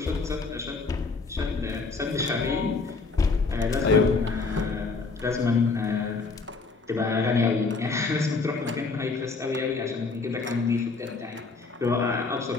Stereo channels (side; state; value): right; quieter; 4.2 dB